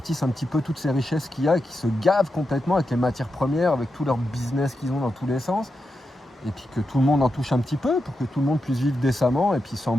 un petit peu toutes ces richesses qu'il y a et qui se gavent complètement avec les matières premières, avec tout leur business qu'ils ont dans tous les sens, et puis que tout le monde en touche un petit peu pour que tout le monde puisse vivre décemment et puis sans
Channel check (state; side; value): normal; both; correlation 0.87